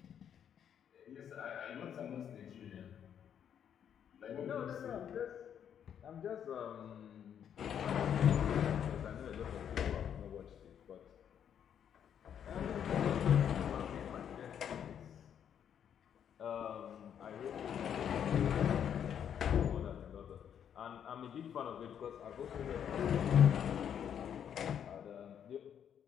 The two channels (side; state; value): right; quieter; 8.8 dB